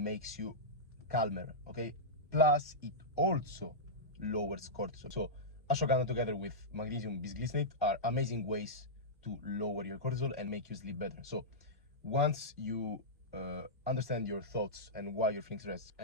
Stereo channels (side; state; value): both; normal; correlation -0.12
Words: you calmer, okay? Plus, it also lowers cortisol. So ashwagandha together with magnesium bisglycinate are amazing ways to lower your cortisol and make you sleep better. So once you understand your thoughts and why you're feeling stressed,